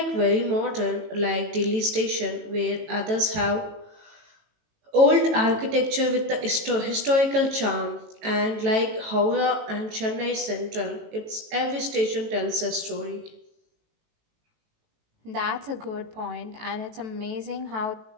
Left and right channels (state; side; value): late; left; 18 ms